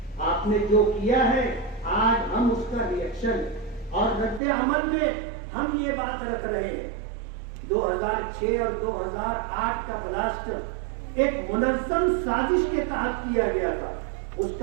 آپ نے جو کیا ہے آج ہم اس کا ریئیکشن اور رد عمل میں ہم یہ بات رکھ رہے ہیں. 2006 اور 2008 کا بلاسٹ ایک منظم سازش کے تحت کیا گیا تھا. اس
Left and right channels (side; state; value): left; drops out; at 4.4 s